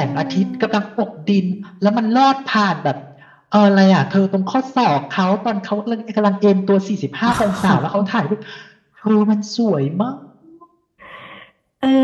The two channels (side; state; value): both; identical; correlation 1.00